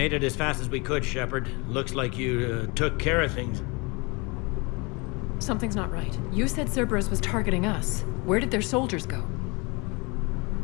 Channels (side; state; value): right; quieter; 28.2 dB